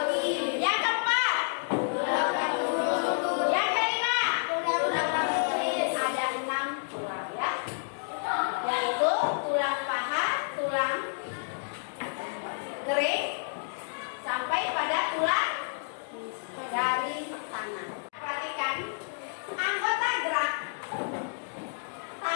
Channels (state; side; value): silent; right; digital silence